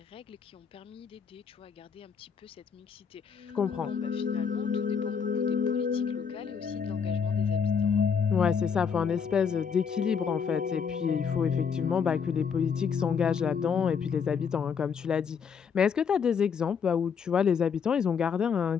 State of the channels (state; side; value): quieter; right; 6.6 dB